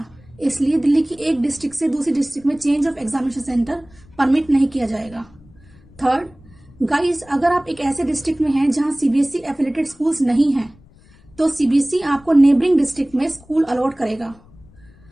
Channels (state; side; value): noise; left; rumble, 26 dB below the sound